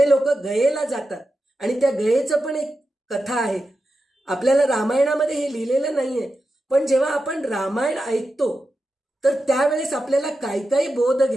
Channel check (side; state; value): both; normal; correlation 0.90